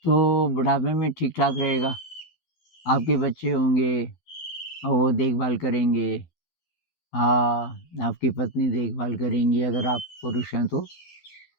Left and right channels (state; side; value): late; right; 12 ms